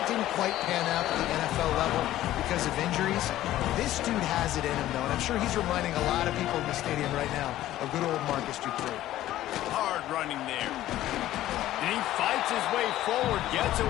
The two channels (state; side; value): quieter; right; 14.1 dB